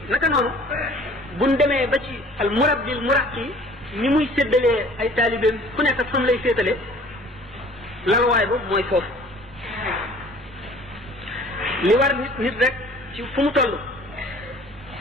naka noonu buñ demee ba ci al murabbil muraqi ni muy séddalee ay taalibeem ku nekk ak fam lay féetale lalwaay ba mooy foofu li war nit rek ci fu mu toll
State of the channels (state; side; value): normal; both; correlation 0.50